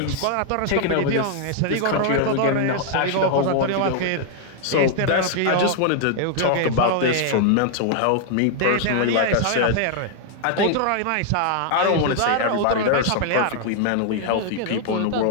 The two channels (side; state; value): both; different; correlation 0.00